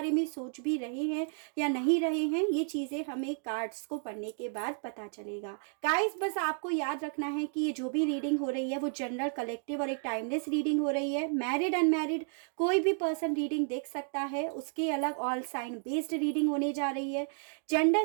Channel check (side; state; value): left; silent; 56 dB below the other